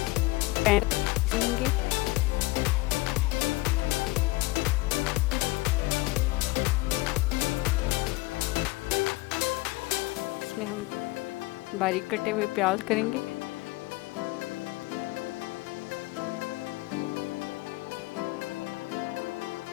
पैन लेंगे, इसमें हम बारीक कटे हुए प्याज करेंगे।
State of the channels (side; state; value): right; quieter; 21.3 dB